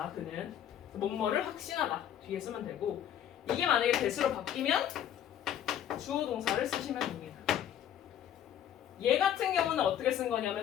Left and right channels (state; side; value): quieter; right; 10.3 dB